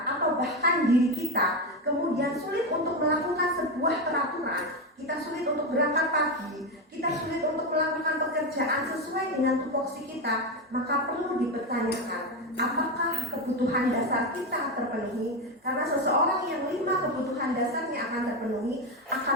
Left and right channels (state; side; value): normal; both; correlation 0.13